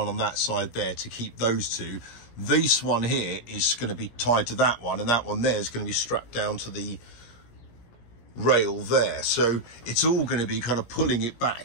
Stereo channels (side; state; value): right; late; 17 ms